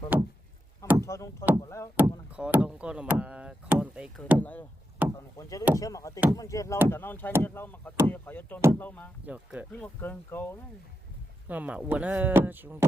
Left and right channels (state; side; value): normal; both; correlation 0.87